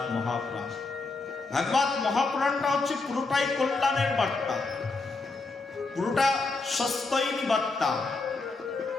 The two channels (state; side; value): quieter; right; 3.7 dB